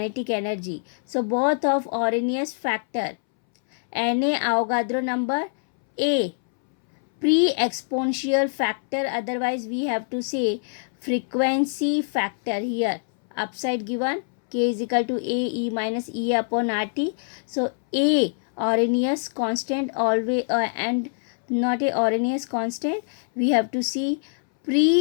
energy. So both of Arrhenius factor. NA Avogadro number, A pre-exponential factor, otherwise we have to say frequency factor. Here upside given k is equal to A E minus E upon RT. So A Arrhenius constant always, and not a Arrhenius constant, we have to see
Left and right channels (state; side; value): silent; right; 62 dB below the other